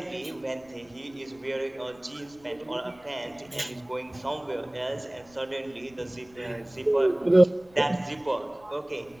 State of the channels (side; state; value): left; noise; rumble, 28 dB below the sound